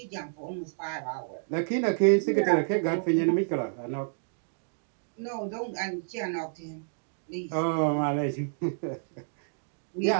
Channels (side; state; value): left; silent; digital silence